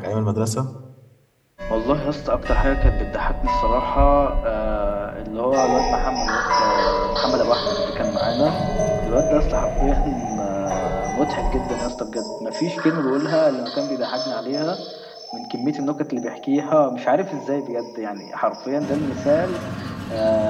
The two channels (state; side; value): identical; both; correlation 1.00